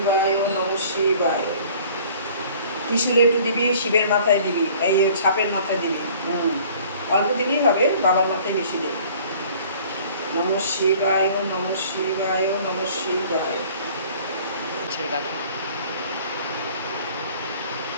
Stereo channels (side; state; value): both; inverted; correlation -0.51